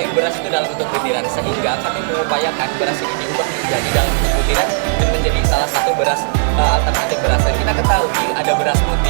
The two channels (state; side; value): silent; left; digital silence